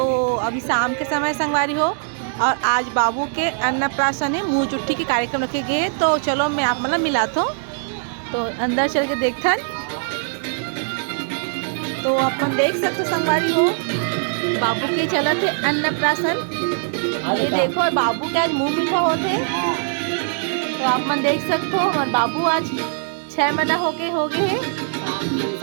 अभी शाम के समय संगवारी हो और आज बाबू के अन्नप्राशन है, मुँह चुट्टी के कार्यक्रम रखे गए। तो चलो मैं आप मतलब मिलाता हूँ, तो अंदर चल के देखथन। तो अपन देख सकते संगवारी हो बाबू के चलत है अन्नप्राशन। ये देखो और बाबू के आज मुँह मीठा होते, तो आप मन देख सकते हो। और बाबू आज 6 महीना हो गए हैं,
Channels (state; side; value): silent; left; digital silence